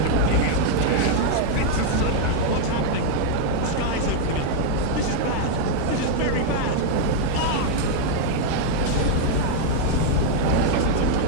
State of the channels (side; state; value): both; different; correlation 0.00